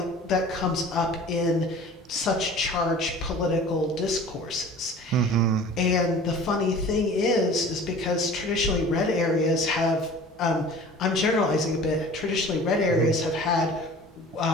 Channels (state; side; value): normal; both; correlation 0.43